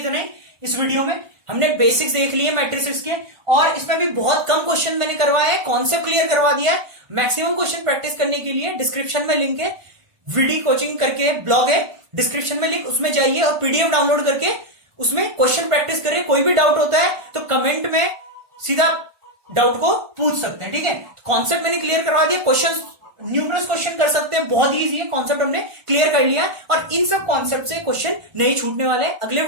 ही. इस वीडियो में हमने बेसिक्स देख लिए मैट्रिसेस के, और इसमें भी बहुत कम क्वेश्चन मैंने करवाए हैं, कॉन्सेप्ट क्लियर करवा दिया है. मैक्सिमम क्वेश्चन प्रैक्टिस करने के लिए डिस्क्रिप्शन में लिंक है, वीडियो कोचिंग करके ब्लॉग है डिस्क्रिप्शन में लिंक, उसमें जाइए और पीडीएफ डाउनलोड करके उसमें क्वेश्चन प्रैक्टिस करें. कोई भी डाउट होता है तो कमेंट में सीधा डाउट को पूछ सकते हैं. ठीक है, कॉन्सेप्ट मैंने क्लियर करवा दिया. क्वेश्चन न्यूमरस क्वेश्चन कर सकते हैं, बहुत इजी है. कॉन्सेप्ट हमने क्लियर कर लिया और इन सब कॉन्सेप्ट से क्वेश्चन नहीं छूटने वाले हैं. अगले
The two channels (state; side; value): late; left; 1.2 ms